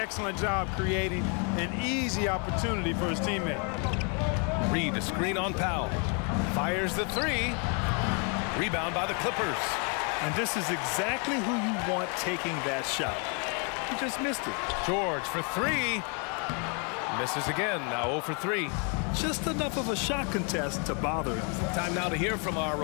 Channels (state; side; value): quieter; right; 37.2 dB